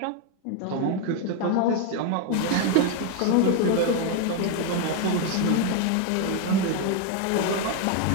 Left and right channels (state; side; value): different; both; correlation 0.01